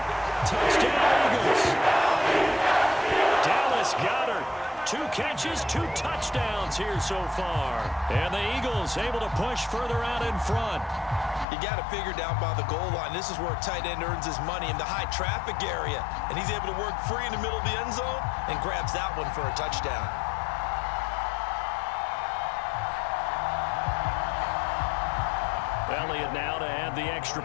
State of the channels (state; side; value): drops out; right; at 11.5 s